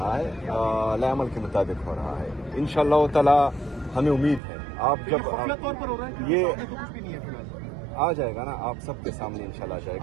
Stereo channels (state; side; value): drops out; left; at 4.4 s